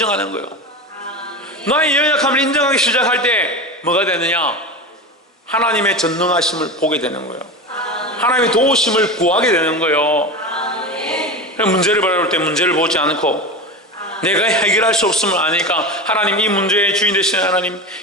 거예요. 나의 연약함을 인정하기 시작할 때 뭐가 되느냐? 하나님의 전능하심을 보게 되는 거예요. 하나님의 도우심을 구하게 되는 거예요. 문제를 바라볼 때 문제를 보지 않고 내가 해결할 수 없음을 아니까 하나님, 이 문제의 주인 되시는 하나님,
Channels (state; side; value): normal; both; correlation 0.25